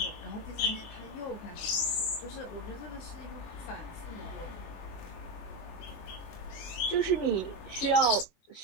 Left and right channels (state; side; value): late; right; 21 ms